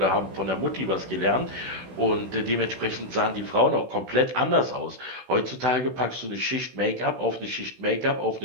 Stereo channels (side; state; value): left; late; 16 ms